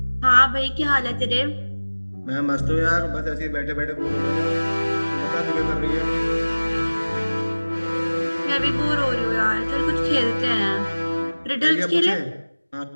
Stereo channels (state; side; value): inverted; both; correlation -1.00